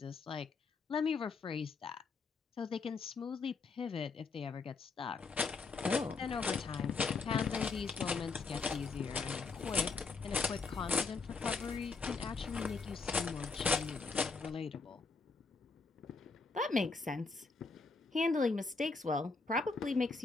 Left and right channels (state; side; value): quieter; right; 4.4 dB